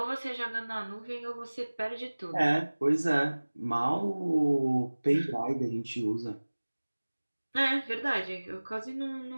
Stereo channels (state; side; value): inverted; both; correlation -1.00